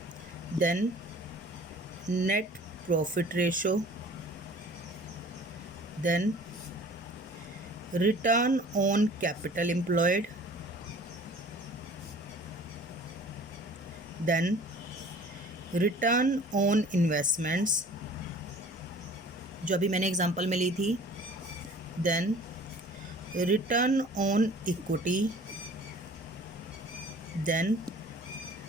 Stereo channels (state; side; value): normal; both; correlation 0.48